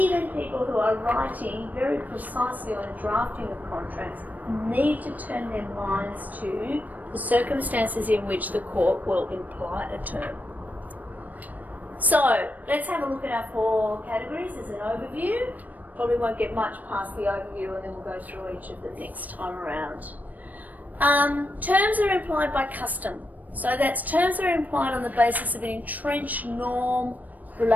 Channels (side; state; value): left; late; 0.081 ms